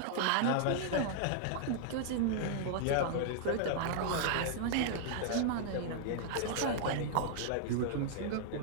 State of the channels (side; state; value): both; different; correlation -0.01